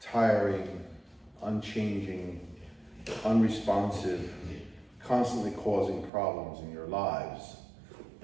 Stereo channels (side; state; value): left; drops out; at 6.1 s